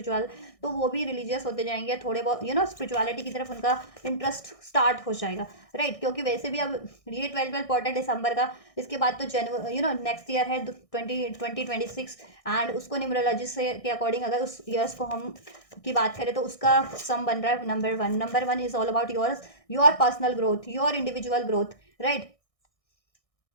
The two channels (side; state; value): right; late; 1.6 ms